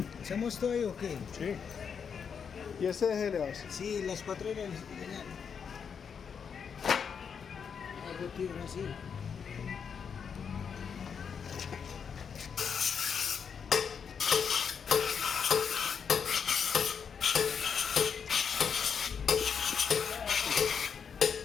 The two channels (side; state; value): right; quieter; 6.7 dB